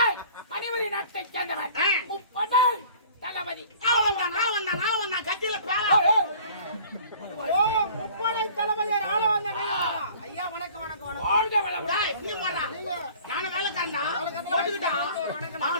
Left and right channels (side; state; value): both; inverted; correlation -0.49